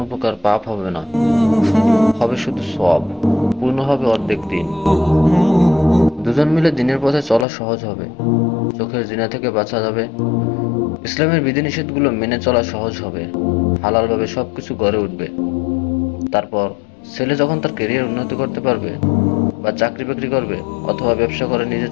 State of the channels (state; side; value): drops out; right; at 7.5 s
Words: প্রকার পাপ হবে না, হবে শুধু সওয়াব। পূর্ণ হবে অর্ধেক দিন। দুজন মিলে দিনের পথে চলা সহজ হবে। চোখের জিনা থেকে বাঁচা যাবে। ইসলামের বিধিনিষেধগুলো মেনে চলা সহজ হবে। হালালভাবে সবকিছু গড়ে উঠবে। তারপর ছেলে যখন তার ক্যারিয়ার উন্নতি করতে পারবে, বা চাকরি বাকরি করবে, অথবা ব্যবসা করে নিজে